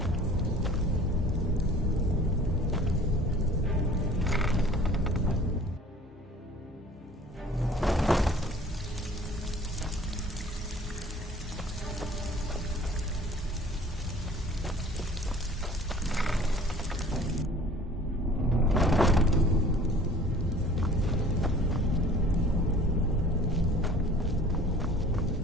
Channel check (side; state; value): both; normal; correlation 0.49